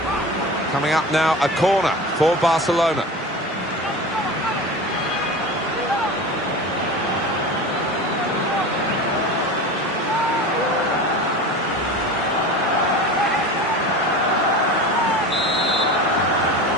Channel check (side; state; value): both; normal; correlation 0.31